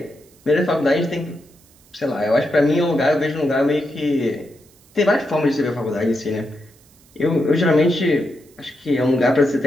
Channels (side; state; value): right; noise; hiss, 29 dB below the sound